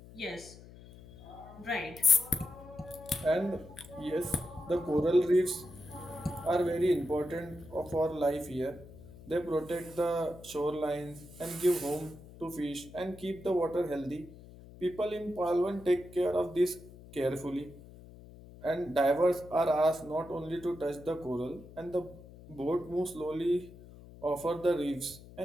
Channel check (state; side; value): noise; left; hum, 18 dB below the sound